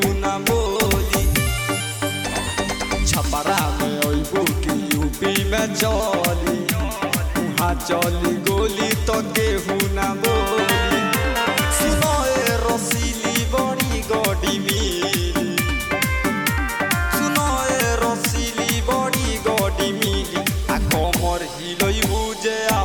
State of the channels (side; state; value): both; identical; correlation 1.00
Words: ना बोली। छपरा में अइबू की यूपी में चली उहाँ चली गोली तो केहू ना बोली। सुनो ए रसीली बड़ी गड़ी मिली, सुनो ए रसीली बड़ी गड़ी मिली। आ कमर हिलइबू जे